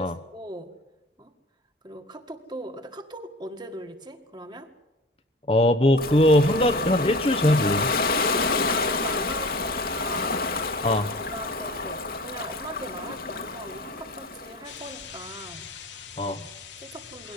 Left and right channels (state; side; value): normal; both; correlation 0.40